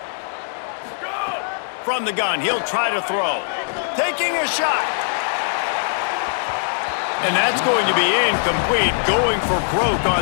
From the gun, he'll try to throw. Taking a shot. And that's going to be incomplete. Going for broke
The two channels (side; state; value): right; silent; digital silence